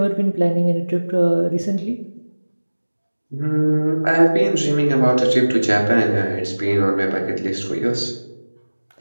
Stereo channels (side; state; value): both; inverted; correlation -1.00